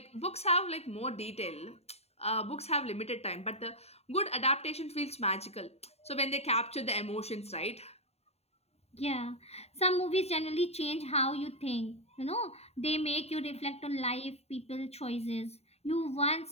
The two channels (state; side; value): late; right; 0.30 ms